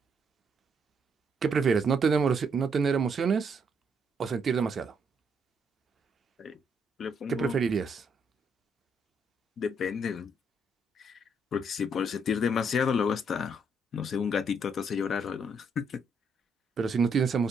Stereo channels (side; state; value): both; normal; correlation 0.73